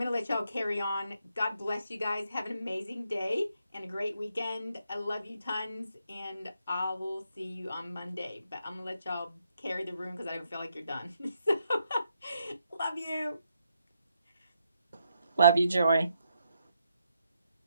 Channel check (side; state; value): both; inverted; correlation -0.78